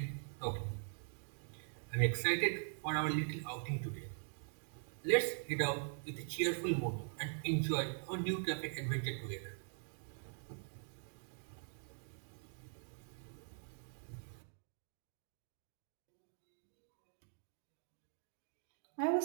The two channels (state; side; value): silent; left; digital silence